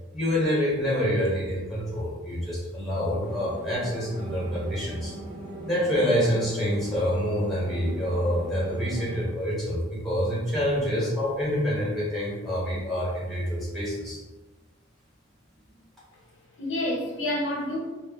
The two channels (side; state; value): both; normal; correlation 0.55